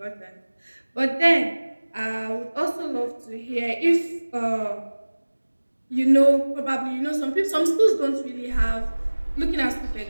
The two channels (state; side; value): inverted; both; correlation -1.00